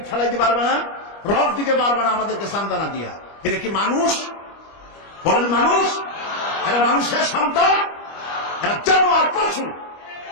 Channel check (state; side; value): late; right; 25 ms